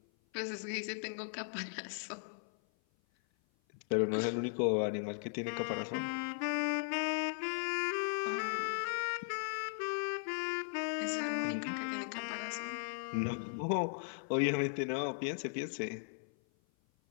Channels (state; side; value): silent; right; 53 dB below the other